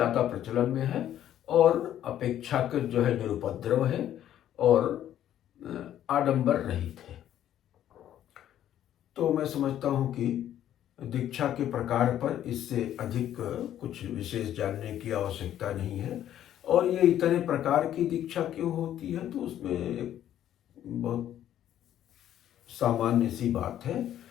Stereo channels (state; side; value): quieter; right; 11.4 dB